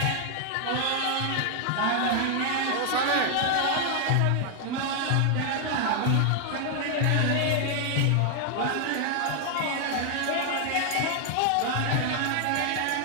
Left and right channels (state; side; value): different; both; correlation 0.00